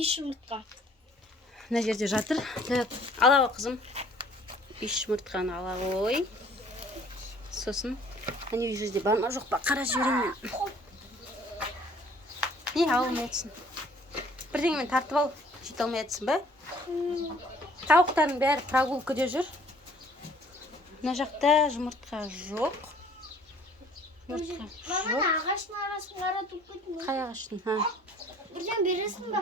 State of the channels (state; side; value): normal; both; correlation 0.56